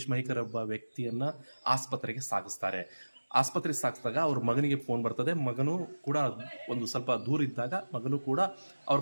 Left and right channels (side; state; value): both; inverted; correlation -1.00